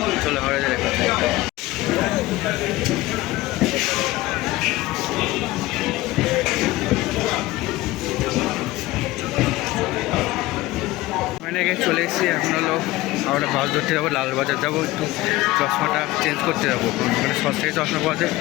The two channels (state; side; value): quieter; right; 18.5 dB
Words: চলো হাওড়া যেতে দেখা হচ্ছে। চলে এসেছি। এখন হাওড়া বাস ধরতে যাবো, লালবাজার যাবো, একটু চশমাটা চেঞ্জ করতে যাবো। মানে সস্তায় চশমা পাওয়া যায়।